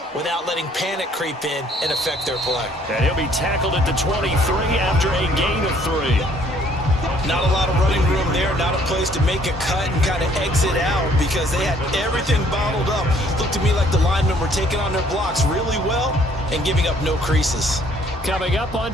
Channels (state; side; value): normal; both; correlation 0.61